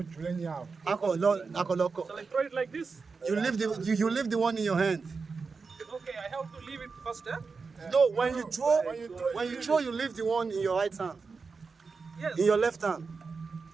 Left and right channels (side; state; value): left; quieter; 4.7 dB